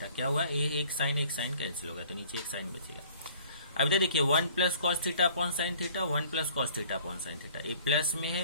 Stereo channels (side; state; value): both; inverted; correlation -0.53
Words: क्या हुआ? ये एक साइन कैंसिल हो गया, तो नीचे एक साइन बचेगा। अब इधर देखिए 1 plus cos theta upon sine theta, 1 plus cos theta upon sine theta, ये प्लस में